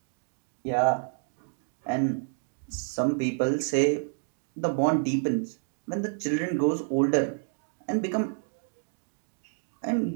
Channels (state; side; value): silent; left; digital silence